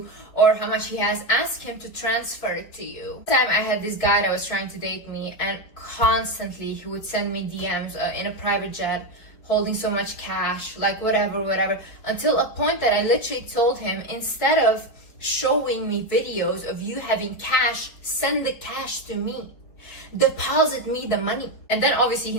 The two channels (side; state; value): right; late; 4.9 ms